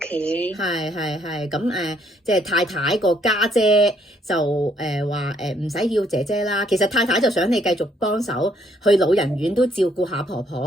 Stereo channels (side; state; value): both; normal; correlation 0.68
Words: 係咁即係太太個家姐就話唔使要姐姐啦。其實太太就想你繼續幫手去老人院都照顧下婆